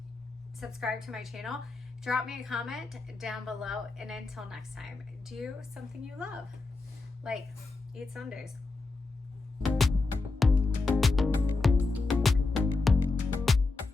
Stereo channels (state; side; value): quieter; right; 3.6 dB